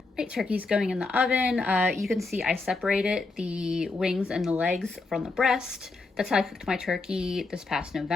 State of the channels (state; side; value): quieter; right; 3.6 dB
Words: Right, turkey's going in the oven. You can see I separated the wings and the legs from the breast. That's how I cooked my turkey this past